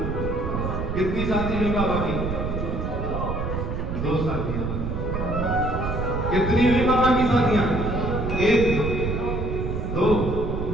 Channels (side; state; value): right; noise; rumble, 3 dB below the sound